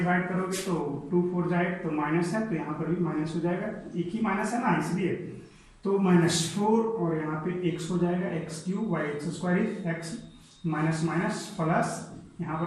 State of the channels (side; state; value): both; identical; correlation 1.00